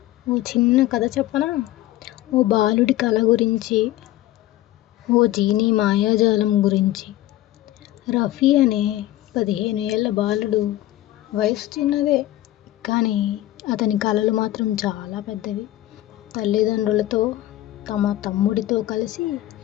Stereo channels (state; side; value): quieter; right; 15.2 dB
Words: ఓ చిన్న కథ చెప్పనా? ఓ బాలుడి కల గురించి, ఓ జీనీ మాయాజాలం గురించి. రఫీ అనే 15 ఏళ్ల బాలుడు. వయసు చిన్నదే, కానీ అతని కలలు మాత్రం చాలా పెద్దవి. తల్లిదండ్రులతో, తమ తమ్ముడితో కలిసి